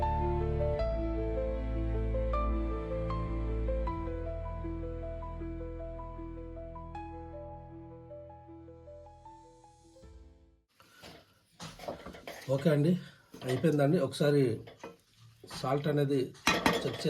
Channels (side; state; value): both; identical; correlation 1.00